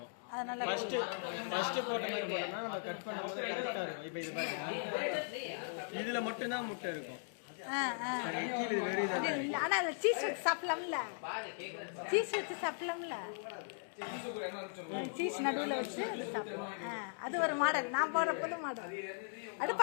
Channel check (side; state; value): right; silent; digital silence